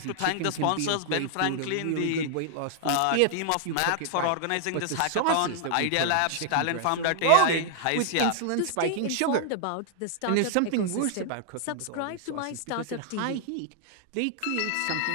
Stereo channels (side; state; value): both; different; correlation 0.00